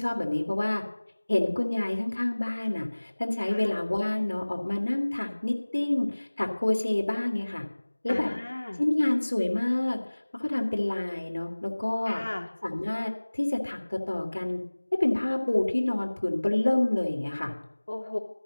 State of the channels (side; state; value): both; inverted; correlation -1.00